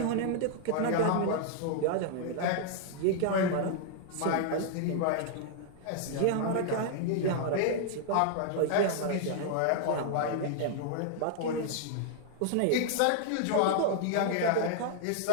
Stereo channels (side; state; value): both; different; correlation 0.00